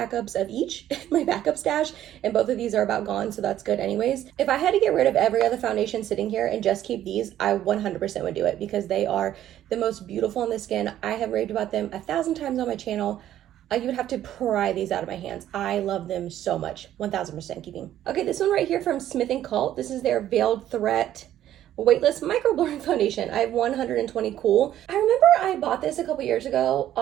of each in my backup stash, and both of these are about gone, so that's good anyways. If I had to get rid of every other foundation sitting here and just keep these, I 100% would do it because they are the most beautiful on the skin. I have raved about them 1,000 times on my channel. You would have to pry these out of my hands. I love them so much. 1,000% keeping. Okay, this one right here from Smith & Cult. This is their Veiled Threat Weightless Micro Blurring Foundation. I have 120 Cool. I remember I bought this a couple years ago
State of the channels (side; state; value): left; quieter; 12.1 dB